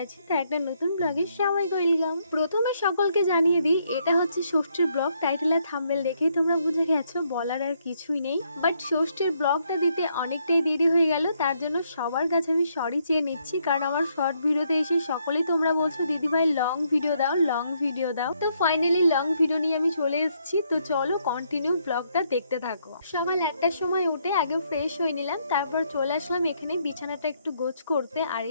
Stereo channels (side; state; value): both; inverted; correlation -0.73